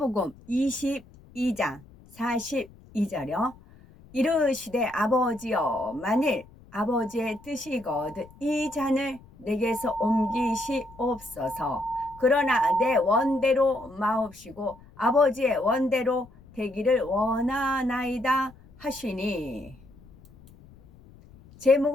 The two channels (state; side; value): noise; left; rumble, 24 dB below the sound